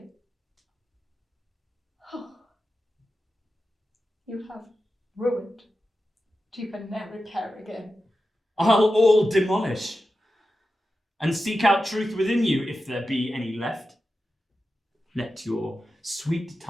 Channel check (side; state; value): both; normal; correlation 0.92